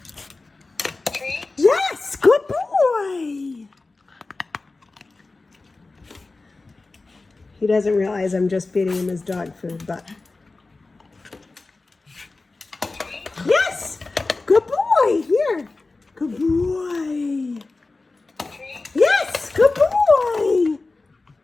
Treat. Yes, good boy. He doesn't realize I'm just feeding him his dog food, but. Yes, good boy. Here, good boy. Treat. Yes, good boy.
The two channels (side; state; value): right; quieter; 3.5 dB